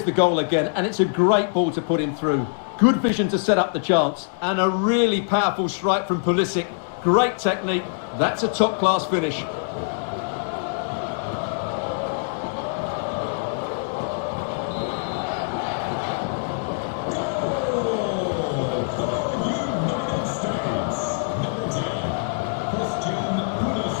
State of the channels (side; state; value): right; silent; digital silence